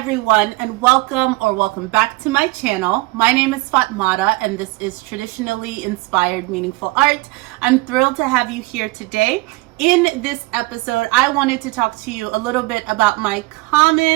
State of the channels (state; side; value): quieter; left; 22.6 dB